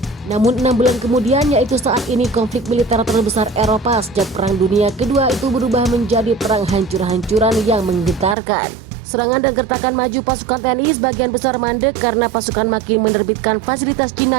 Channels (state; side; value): drops out; left; at 8.3 s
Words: Namun 6 bulan kemudian, yaitu saat ini konflik militer terbesar Eropa sejak Perang Dunia Kedua itu berubah menjadi perang hancur-hancuran yang menggetarkan. Serangan dan gertakan maju pasukan TNI sebagian besar mandek karena pasukan makin menerbitkan fasilitas